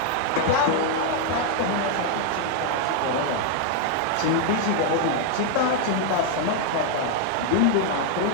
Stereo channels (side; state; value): both; different; correlation 0.00